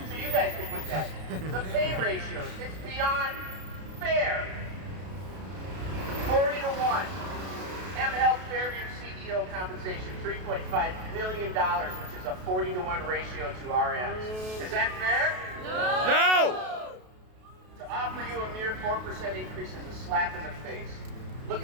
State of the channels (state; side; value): late; left; 32 ms